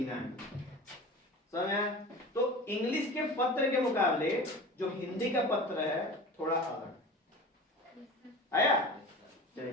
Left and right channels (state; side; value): normal; both; correlation 0.35